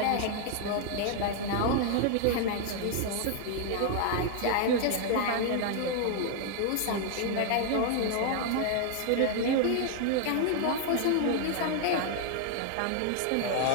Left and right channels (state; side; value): different; both; correlation 0.00